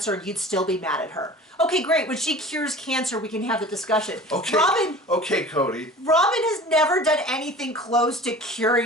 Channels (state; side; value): normal; both; correlation 0.41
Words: and you'd still be mad at her. Okay, great. When she cures cancer, we can have the discussion. Okay. Okay, Cody. Robin has never done anything close to